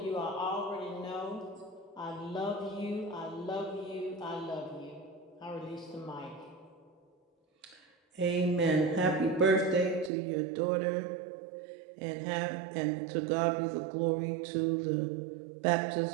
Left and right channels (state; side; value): drops out; left; at 10.1 s